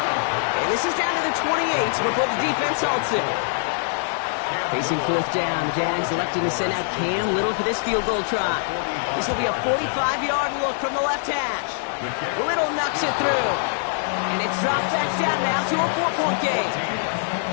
And this is down to the 28 before the defense halts it. Facing fourth down, the Jags electing to send out Cam Little for this field goal try. This will be a 45-yard look from the left hash. Little knocks it through. And it's dropped back down now to a 4-point game.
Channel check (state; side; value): silent; right; 63 dB below the other